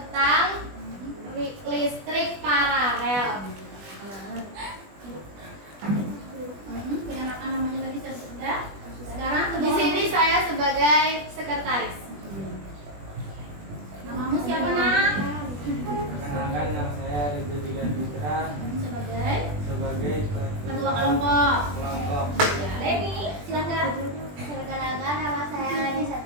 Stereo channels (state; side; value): late; left; 20 ms